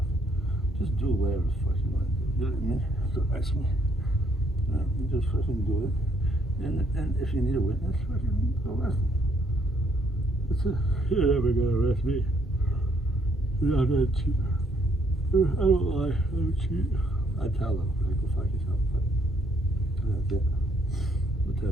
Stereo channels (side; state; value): both; normal; correlation 0.69